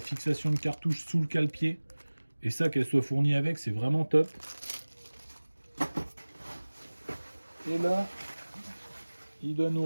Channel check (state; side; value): inverted; both; correlation -1.00